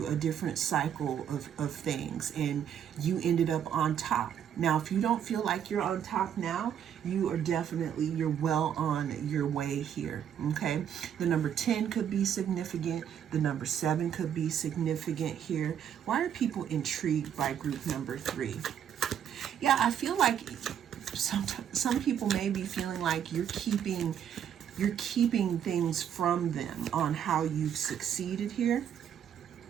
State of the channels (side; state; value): left; quieter; 9.1 dB